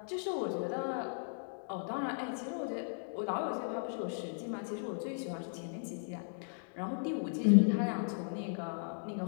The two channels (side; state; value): right; silent; digital silence